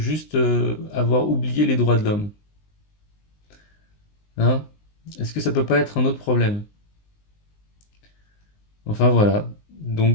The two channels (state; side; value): late; right; 19 ms